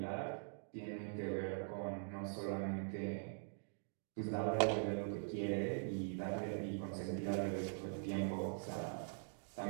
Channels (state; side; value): silent; left; digital silence